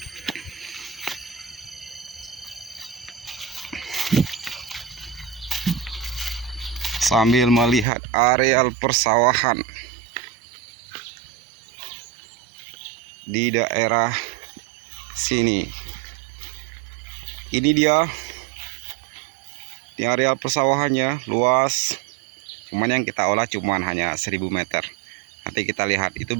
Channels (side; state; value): left; drops out; at 7.9 s